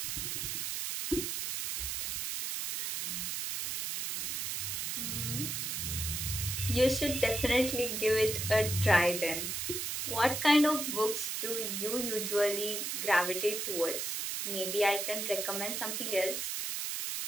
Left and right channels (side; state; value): right; noise; hiss, 2 dB below the sound